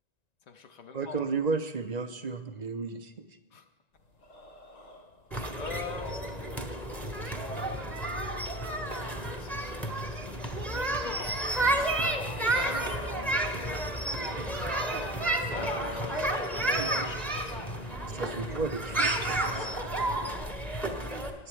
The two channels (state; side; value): late; right; 1.9 ms